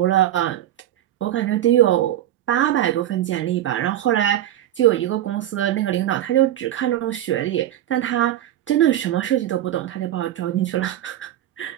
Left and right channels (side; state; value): left; quieter; 12.4 dB